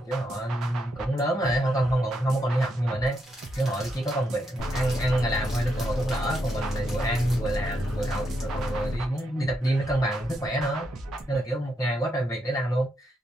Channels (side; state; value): both; normal; correlation 0.80